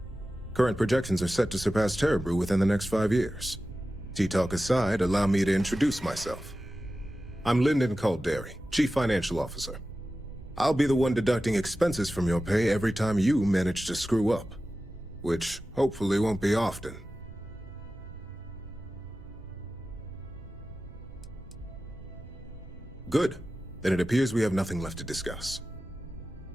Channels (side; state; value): both; normal; correlation 0.94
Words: Current projections are set to surpass Terra Brew within the next 5 years. Tea talk aside, allow me to introduce myself. I'm Lyndon Calderi, Chief Financial Officer. I'll be the one deducting expenses from your pay every time you manage to screw up, which hopefully won't be often. Good. Then it appears we have nothing left to discuss.